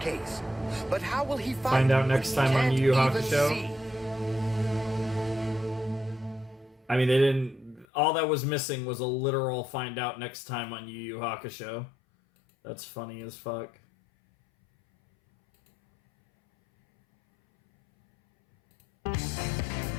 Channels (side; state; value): right; drops out; at 7.9 s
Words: But how will he find out next time on Yu Yu Hakusho? I mean, they didn't... All that was missing was a literal find out next time on Yu Yu Hakusho. That's funny as fuck.